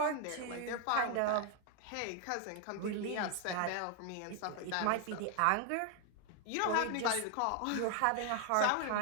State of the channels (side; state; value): both; different; correlation 0.00